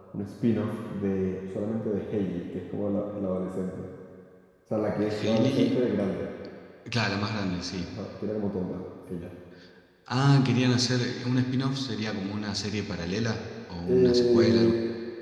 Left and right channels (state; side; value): identical; both; correlation 1.00